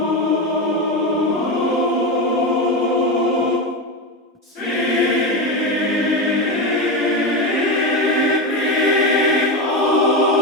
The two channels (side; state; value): both; normal; correlation 0.16